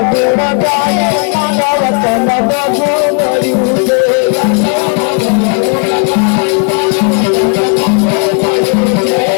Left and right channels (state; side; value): quieter; right; 38.8 dB